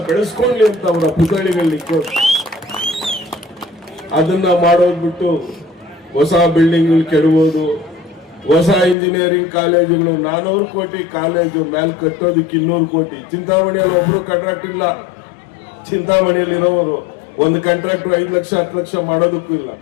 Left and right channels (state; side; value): drops out; right; at 9.0 s